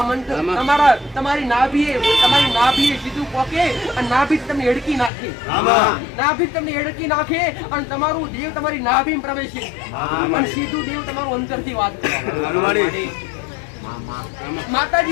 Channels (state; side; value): drops out; right; at 5.1 s